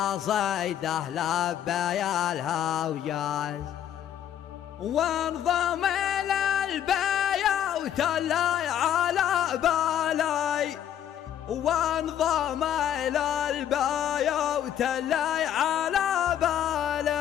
لبى الهجاز، وانضم إلى البيوت اللي على بالي، وانضم إلى البيوت اللي على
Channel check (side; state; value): right; quieter; 10.3 dB